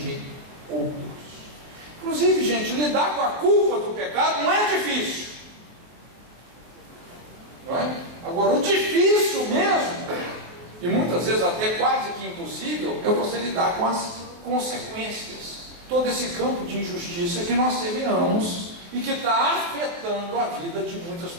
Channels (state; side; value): late; left; 24 ms